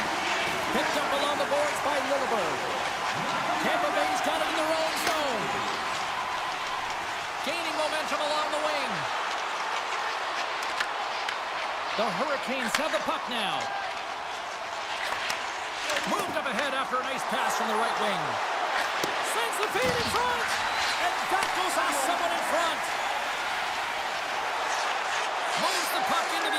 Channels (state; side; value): identical; both; correlation 1.00